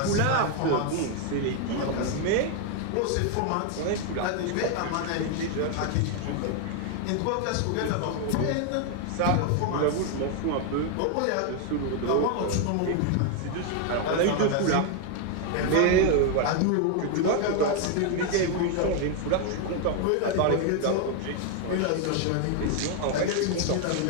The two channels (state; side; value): different; both; correlation 0.01